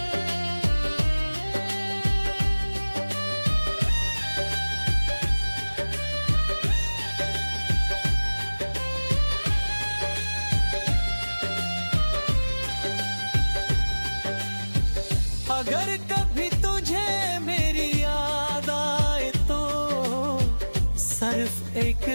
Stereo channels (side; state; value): both; inverted; correlation -1.00